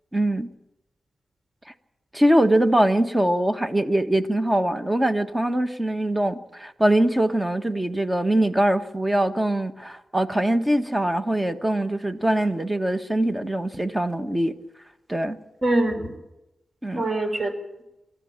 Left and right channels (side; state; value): both; normal; correlation 0.96